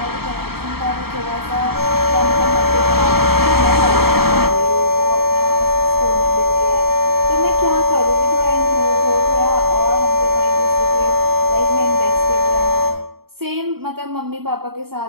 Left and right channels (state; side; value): late; left; 0.95 ms